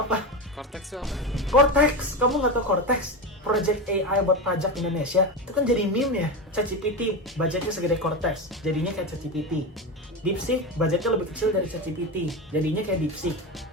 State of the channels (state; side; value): normal; both; correlation 0.19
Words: Cortex itu apa? Cortex, kamu nggak tahu Cortex? Project AI buat pajak Indonesia. Itu kan jadi meme ya. ChatGPT, budgetnya segede Cortex, jadinya kayak ChatGPT. DeepSeek, budgetnya lebih kecil dari ChatGPT, jadinya kayak DeepSeek.